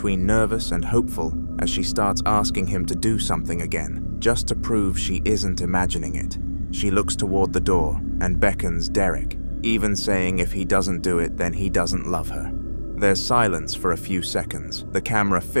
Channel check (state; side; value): inverted; both; correlation -1.00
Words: nervous and hopeful as she starts asking him to do something again, just to prove she isn't imagining it. She looks toward the door and beckons Derek, even saying if he doesn't do it, then he doesn't love her. There's silence for a few seconds, the camera